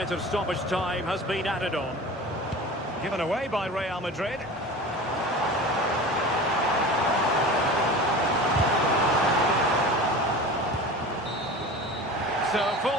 of stoppage time has been added on. Given away by Real Madrid. So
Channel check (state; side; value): normal; both; correlation 0.35